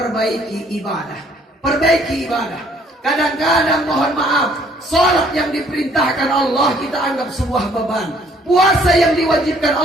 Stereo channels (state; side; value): normal; both; correlation 0.62